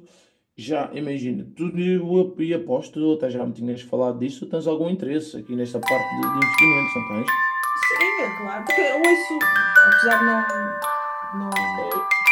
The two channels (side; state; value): both; identical; correlation 1.00